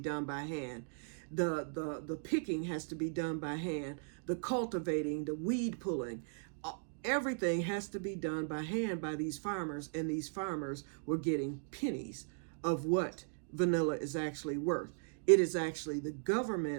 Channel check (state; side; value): silent; left; digital silence